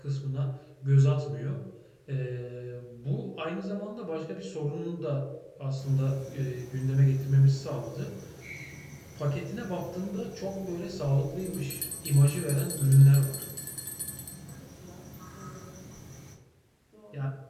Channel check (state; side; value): identical; both; correlation 1.00